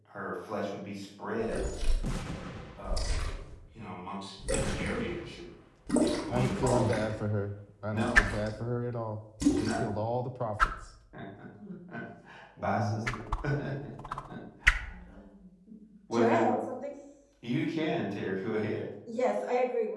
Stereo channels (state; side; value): identical; both; correlation 1.00